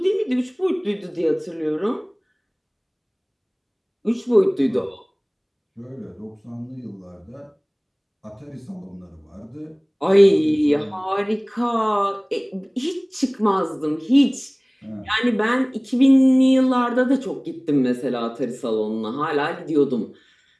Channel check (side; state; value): both; identical; correlation 1.00